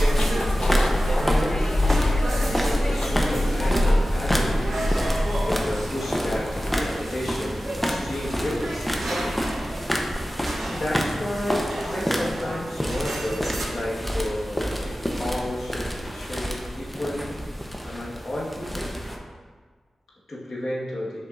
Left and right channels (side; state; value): both; normal; correlation 0.95